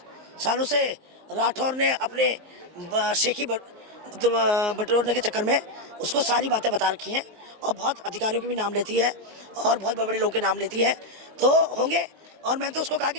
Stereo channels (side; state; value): left; late; 19 ms